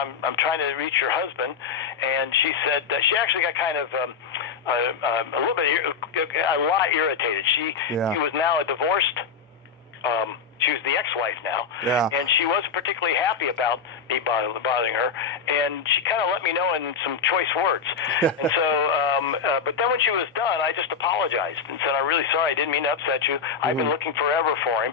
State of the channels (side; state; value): right; quieter; 6.0 dB